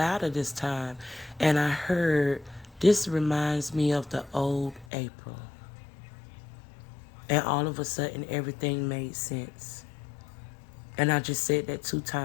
this time, and I heard, this reminds me of the old April. And all of a sudden everything made sense. And I just said that 2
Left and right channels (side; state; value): right; drops out; at 4.9 s